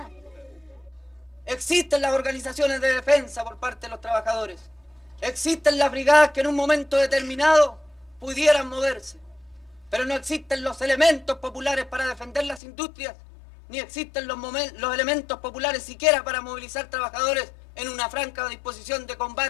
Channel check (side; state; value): right; drops out; at 12.6 s